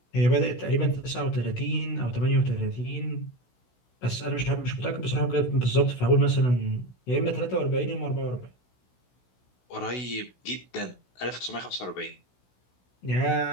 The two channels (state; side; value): late; right; 16 ms